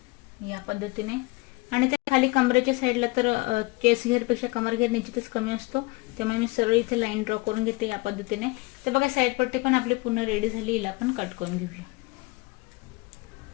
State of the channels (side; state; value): right; quieter; 24.3 dB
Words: या पद्धतीने. आणि ते खाली कमरेच्या साईडला तर चेस्ट घेरपेक्षा कमर घेर निश्चितच कमी असतो, त्यामुळे मी सरळ इथे लाईन ड्रॉ करून घेते या पद्धतीने. तर बघा साईड पट्टी पण आपली पूर्ण रेडी झाली. हिला आपण कट करून घेऊया.